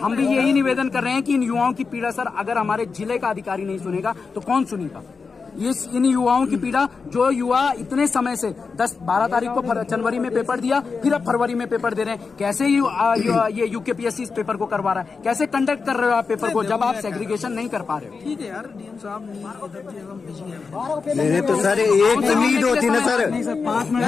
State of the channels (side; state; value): right; quieter; 4.9 dB